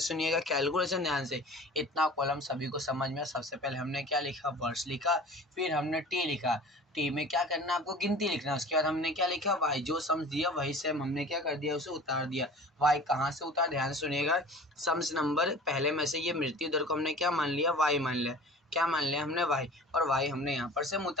कैलकुलेशन ध्यान से, इतना कॉलम सभी को समझ में। सबसे पहले हमने क्या लिखा, वर्ष लिखा, फिर हमने टी लिखा, टी में क्या करना है आपको गिनती लिखना है। उसके बाद हमने क्या लिखा, वाई जो सम्स दिया वही सेम हमने क्या कर दिया, उसे उतार दिया। वाई कहाँ से उतार, ध्यान से सुनिएगा, सम्स नंबर पहले में से ये मृत्यु दर को हमने क्या मान लिया, वाई मान लिया, क्या मान लिया हमने, वाई, और वाई हमने यहाँ पर से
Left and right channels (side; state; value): both; normal; correlation 0.41